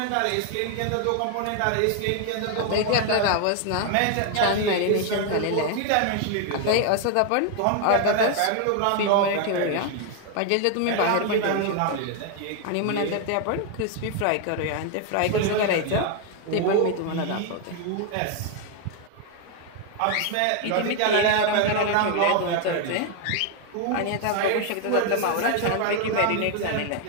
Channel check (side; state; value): both; different; correlation 0.00